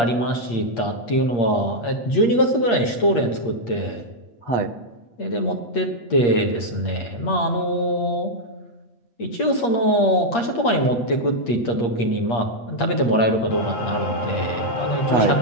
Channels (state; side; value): late; right; 8.5 ms